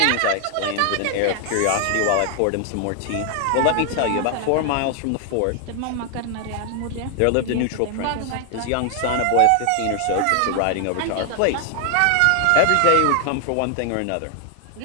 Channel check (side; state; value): both; different; correlation 0.00